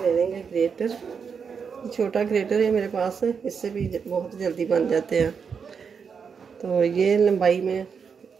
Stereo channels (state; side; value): quieter; left; 6.2 dB